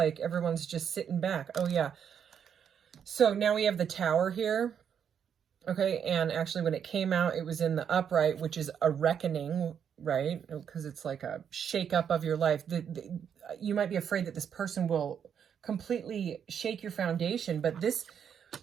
everyone's just sitting back. Oh yeah. So now we have the Tower here. Okay, and actually when it came out, it was in the upright, which is a reckoning, right? Because it's like a shake up of your life. You might be afraid that this person will completely shake your foundation, but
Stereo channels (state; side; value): quieter; left; 8.0 dB